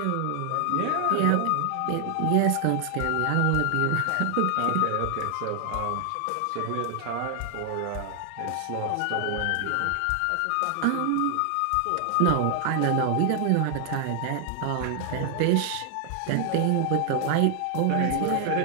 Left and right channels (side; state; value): both; different; correlation 0.00